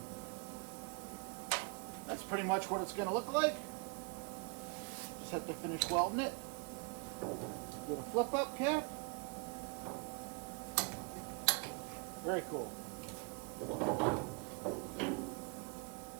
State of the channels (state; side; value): quieter; left; 32.5 dB